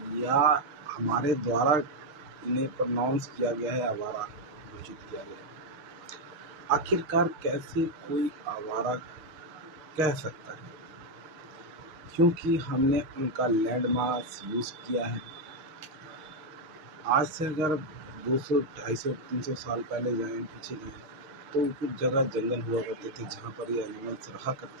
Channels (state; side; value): late; left; 7.1 ms